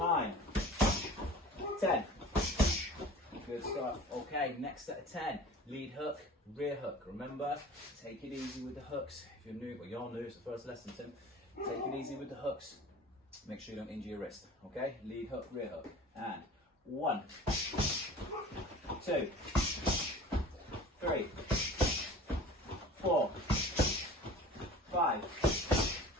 10. Good stuff. Okay, next set of 10. Lead hook, rear hook. Remember, take it easy with the hooks. If you're new, well, you're new, it's the first lesson, Tim. Take it easy with the hooks. Make sure you don't injure your wrist. Okay, lead hook, rear hook. And 1, 2, 3, 4, 5,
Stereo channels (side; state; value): both; normal; correlation 0.42